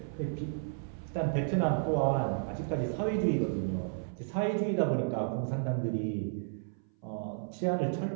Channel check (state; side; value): silent; left; 56 dB below the other